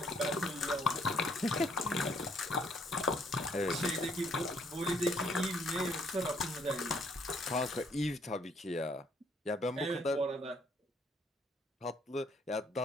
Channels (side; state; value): both; normal; correlation 0.66